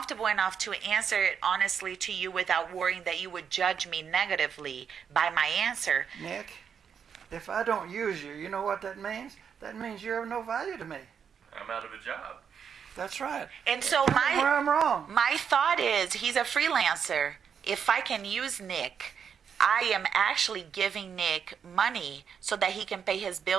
enough to answer it honestly to you without worrying that you would judge me negatively by my answer. Nick, if I don't use you, you know what that means? That means you're of no value to me. I'm out of a job. That's right. And so Tell me where I'm wrong. My thought is he's a freelancer. If I can use Nick, I am actually giving Nick money so that he can pay his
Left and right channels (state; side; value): quieter; left; 7.2 dB